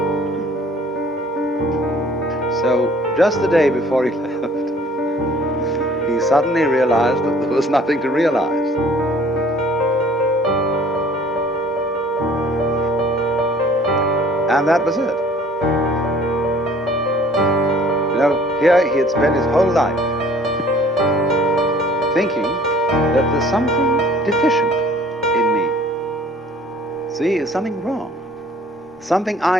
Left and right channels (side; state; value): both; normal; correlation 0.53